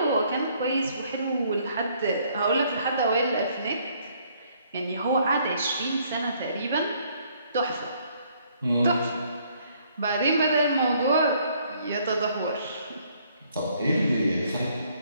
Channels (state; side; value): inverted; both; correlation -0.65